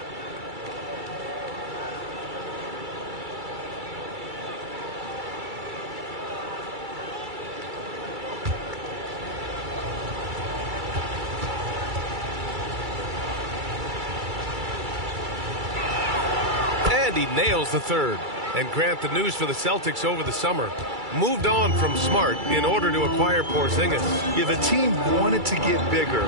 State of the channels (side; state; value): left; late; 2.3 ms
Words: And he nails the third. And Grant, the news for the Celtics over the summer, moved on from Smart in order to acquire Porzingis. Yeah, the team wanted to get bigger,